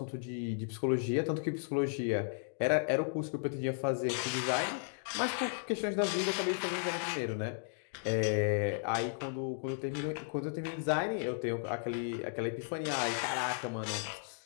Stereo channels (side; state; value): right; silent; digital silence